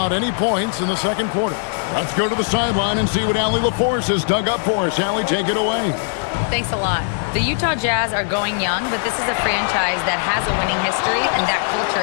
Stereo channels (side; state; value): right; silent; digital silence